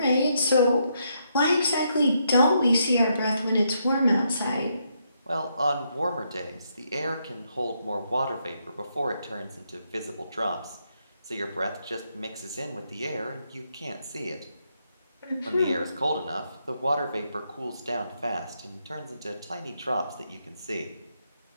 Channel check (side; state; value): both; inverted; correlation -0.77